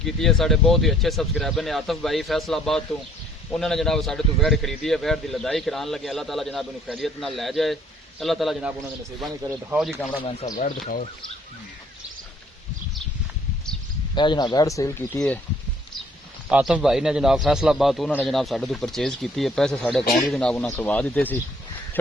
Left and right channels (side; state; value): both; normal; correlation 0.62